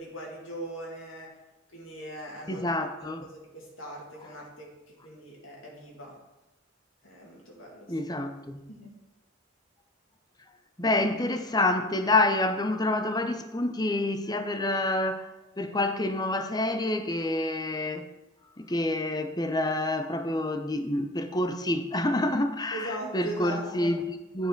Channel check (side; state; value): both; normal; correlation 0.39